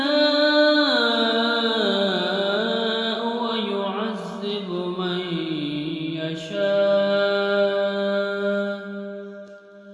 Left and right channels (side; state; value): both; identical; correlation 1.00